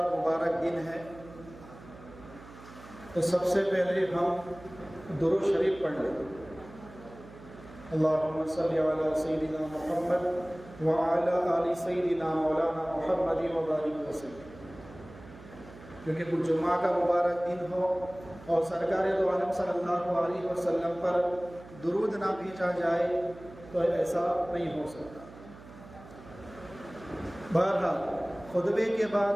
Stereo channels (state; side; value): noise; right; hum, 18 dB below the sound